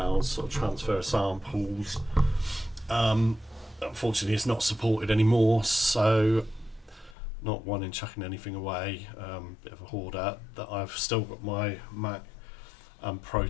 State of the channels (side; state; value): right; drops out; at 7.2 s